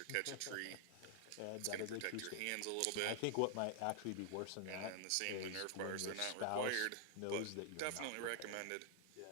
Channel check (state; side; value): different; both; correlation 0.00